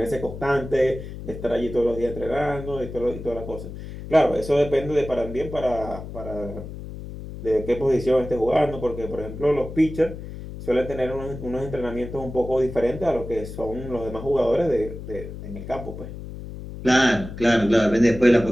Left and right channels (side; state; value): left; noise; hum, 11 dB below the sound